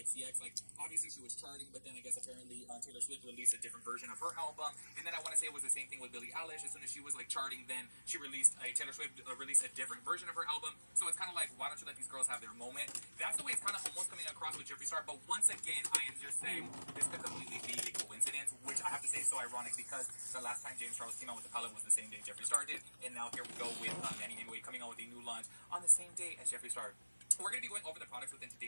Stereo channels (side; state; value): both; inverted; correlation -1.00